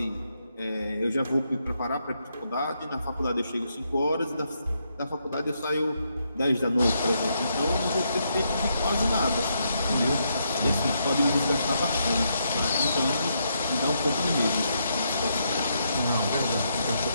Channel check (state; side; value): inverted; both; correlation -0.78